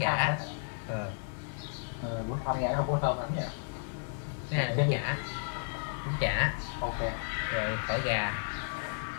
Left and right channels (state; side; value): silent; right; digital silence